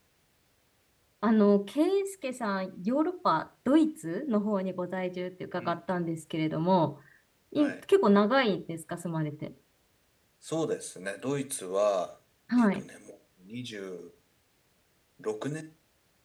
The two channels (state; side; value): identical; both; correlation 1.00